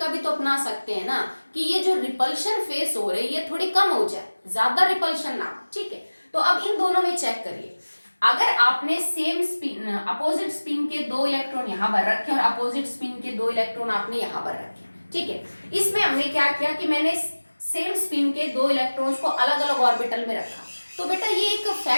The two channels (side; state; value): both; inverted; correlation -1.00